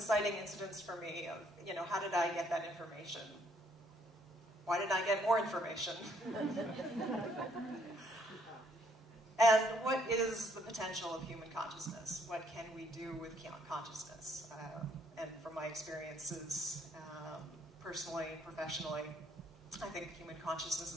incidents for me of, how did I get that information? Why didn't I get more information? And what is the potential of human consciousness? What can we do with consciousness? And from my experiences, personally, professionally, I think human consciousness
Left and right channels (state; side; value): normal; both; correlation 0.68